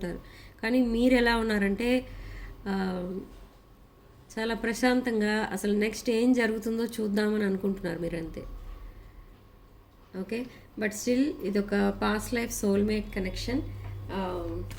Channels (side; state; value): both; identical; correlation 1.00